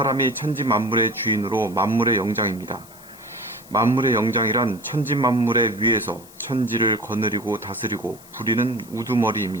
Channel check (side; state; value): left; noise; hiss, 22 dB below the sound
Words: 천지 만물의 주인으로 만물의 영장입니다. 만물의 영장이란 천지 만물의 위에서 천지를 거느리고 다스리고 부리는